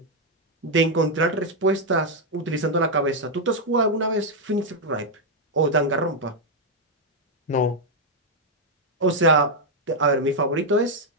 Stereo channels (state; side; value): normal; both; correlation 0.00